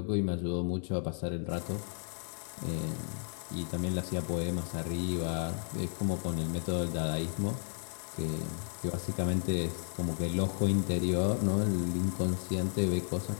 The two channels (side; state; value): right; silent; 56 dB below the other